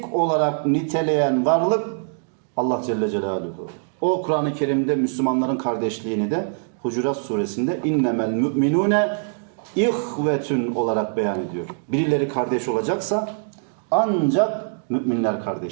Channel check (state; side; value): silent; left; digital silence